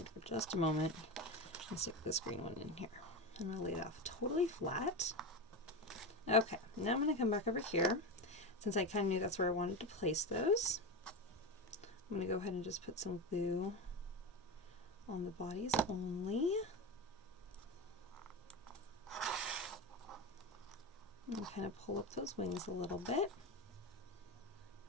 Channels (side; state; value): both; normal; correlation 0.19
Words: for just a moment and stick this green one in here. I'm going to lay it off totally flat. Okay, now I'm going to come back over here. Since I kind of knew that's where I wanted to place those, I'm going to go ahead and just put some glue on the bodies only. And kind of pull up those wings a little bit.